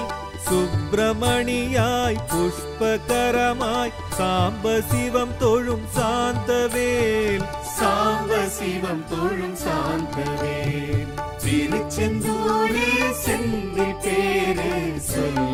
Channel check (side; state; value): both; identical; correlation 1.00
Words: சுப்பிரமணியாய் புஷ்பகரமாய் சாம்ப சிவம் தொழும் சாந்தவேல் சாம்ப சிவம் தொழும் சாந்தவேல் திருச்செந்தூரில் செந்தி பேரு